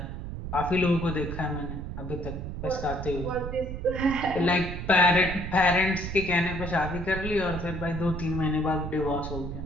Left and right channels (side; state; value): right; noise; rumble, 7 dB below the sound